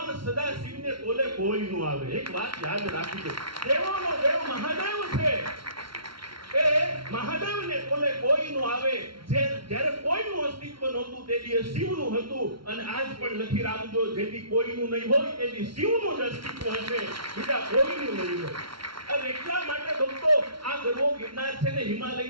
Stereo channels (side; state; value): left; late; 0.74 ms